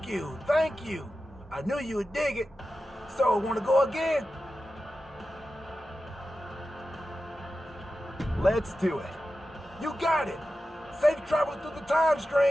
you, thank you. I knew you would dig it. So, wanna go again? Let's do it. You got it. Safe travels through the time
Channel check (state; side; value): normal; both; correlation 0.93